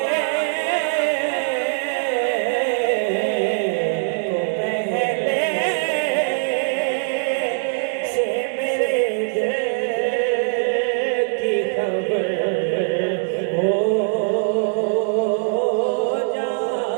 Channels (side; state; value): left; silent; digital silence